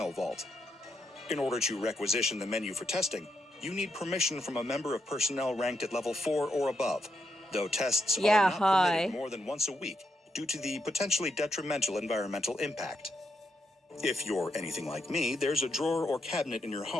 vault. In order to requisition the menu for testing, you need permission from a member of personnel ranked at level 4 or above, though tests are not permitted more than once a week, due to the potentially detrimental environmental impact. If you're anything like me, there's a drawer or cabinet in your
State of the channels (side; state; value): both; normal; correlation 0.82